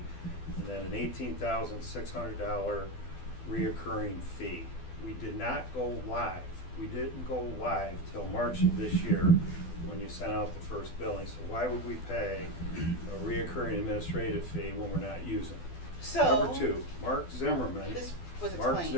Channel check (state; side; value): late; right; 12 ms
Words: and then an $18,600 reoccurring fee. We did not go live. We didn't go live till March of this year when you sent out the first billing. So why would we pay a reoccurring administrative fee when we're not using it? So. Number two, Mark Zimmerman. This was Mark